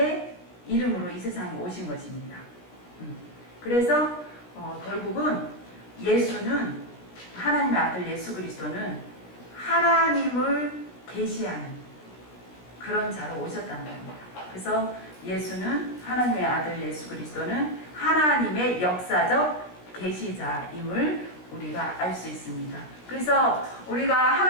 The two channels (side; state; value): right; late; 16 ms